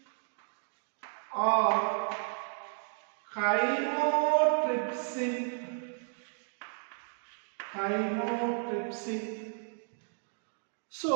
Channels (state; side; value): silent; left; 56 dB below the other